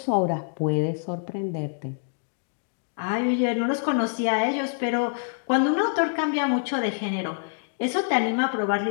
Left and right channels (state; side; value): silent; right; digital silence